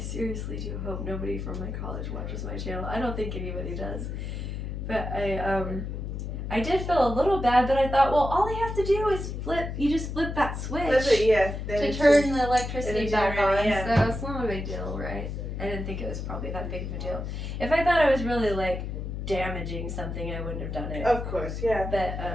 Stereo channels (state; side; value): noise; left; hum, 5 dB below the sound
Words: do hope nobody from my college watches my channel. I don't think anybody does. But I did feel a little bad, but I thought, well, all they have to do is you just flip that switch to turn the electricity back on. Yeah. So it's not a big deal, right? I didn't think it was probably that big of a deal. If I thought I was really like damaging something, I wouldn't have done it. Of course, yeah. But